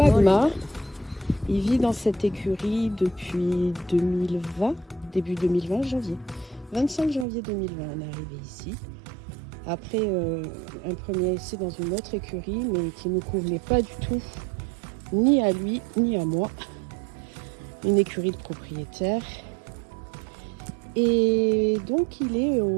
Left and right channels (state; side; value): drops out; left; at 7.2 s